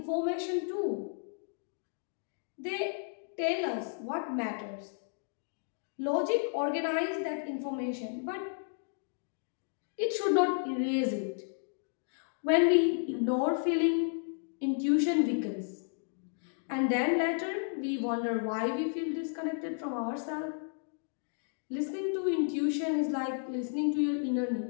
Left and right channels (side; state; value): right; silent; digital silence